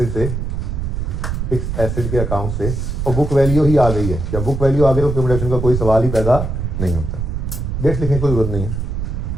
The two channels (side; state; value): right; noise; rumble, 3 dB below the sound